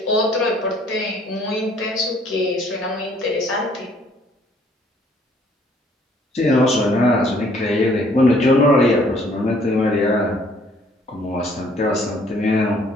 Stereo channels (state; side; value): normal; both; correlation 0.61